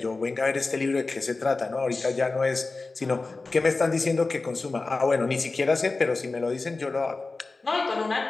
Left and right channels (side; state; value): right; quieter; 3.6 dB